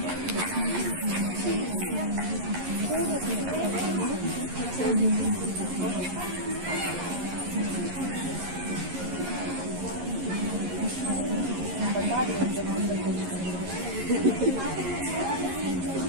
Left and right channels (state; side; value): late; left; 11 ms